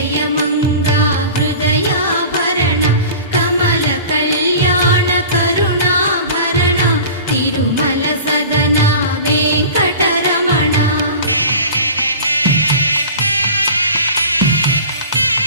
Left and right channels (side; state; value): both; inverted; correlation -0.38